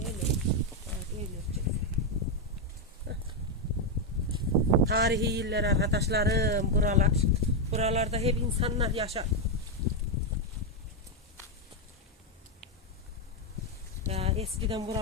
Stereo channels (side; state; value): both; normal; correlation 0.02